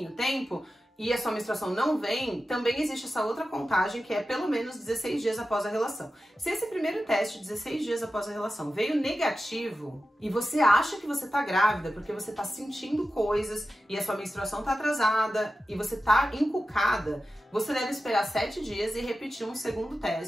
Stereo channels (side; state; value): both; normal; correlation 0.93